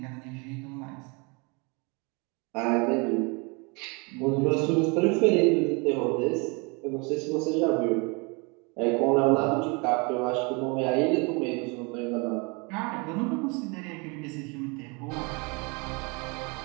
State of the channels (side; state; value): left; quieter; 30.3 dB